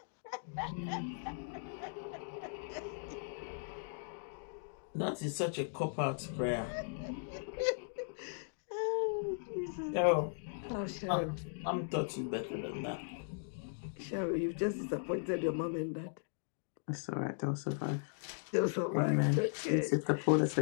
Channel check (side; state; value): right; silent; digital silence